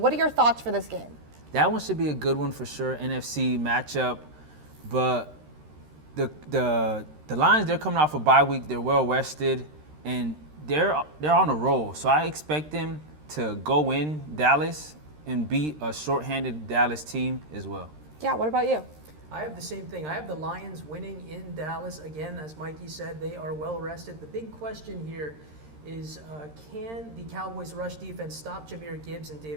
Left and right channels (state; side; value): late; left; 13 ms